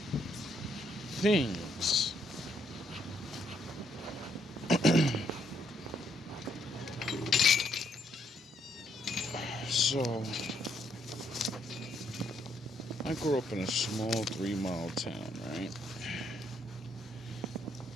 things. So, I grew up in a small 3-mile town, right?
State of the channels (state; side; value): normal; both; correlation 0.73